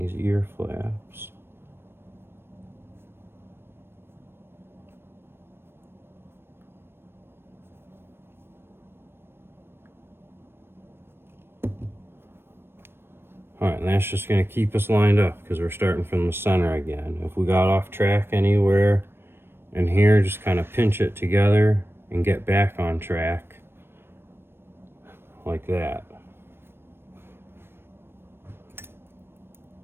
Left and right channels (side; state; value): left; late; 0.11 ms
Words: ear flaps. Alright, and that's just going to keep us lined up because we're starting from the center again. If we got off track anywhere in here, just kind of pinch it together and get back on track like that.